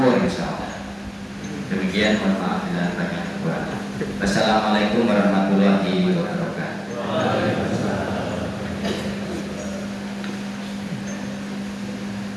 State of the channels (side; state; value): both; identical; correlation 1.00